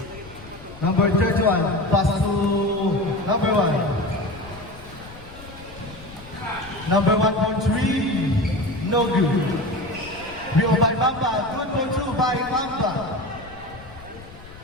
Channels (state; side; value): noise; left; rumble, 18 dB below the sound